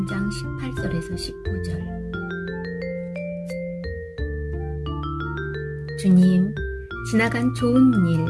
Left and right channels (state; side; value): identical; both; correlation 1.00